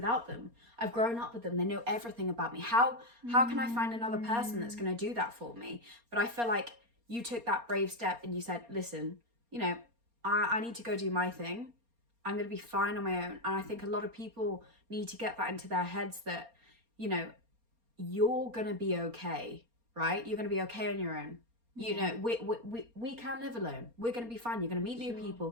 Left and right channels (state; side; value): late; left; 4.3 ms